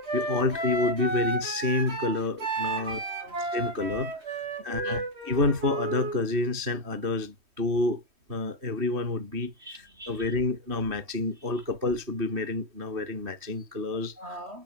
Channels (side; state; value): left; late; 3.1 ms